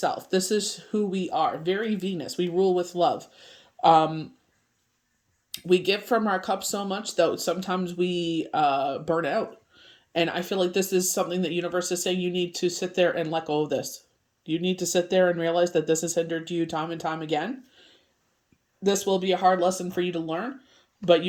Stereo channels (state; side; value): identical; both; correlation 1.00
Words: This is who we are. Very Venus. We rule with love. We give from our cup so much that sometimes we burn out. And I feel like this is something that universe is saying you need to sit there and let go of this. You need to sit there and realize that this has hindered you time and time again. This will be a hard lesson for you to learn, but